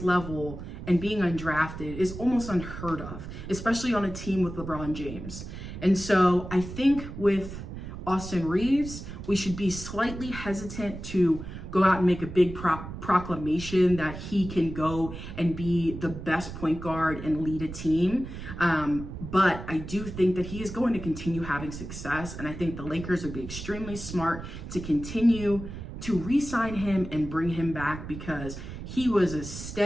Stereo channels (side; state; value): right; noise; rumble, 10 dB below the sound